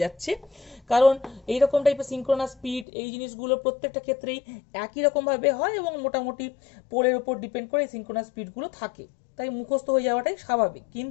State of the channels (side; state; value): right; drops out; at 2.9 s